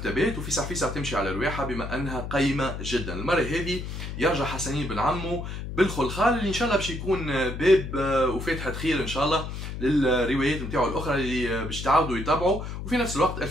وفيسع فيسع تمشي على الواحه بما انها قيمه جدا. المره هذه يرجع حسنين بن عمو بالخلخال اللي ان شاء الله باش يكون باب وفاتحه خير ان شاء الله للروايات نتاعو الاخرى اللي باش تعاودوا يتابعوا. وفي نفس الوقت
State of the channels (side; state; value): left; noise; hum, 7 dB below the sound